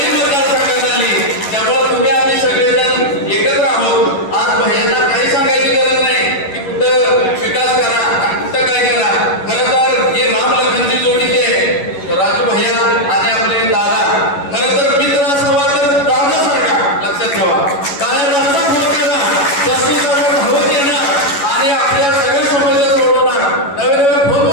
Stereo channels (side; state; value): right; late; 11 ms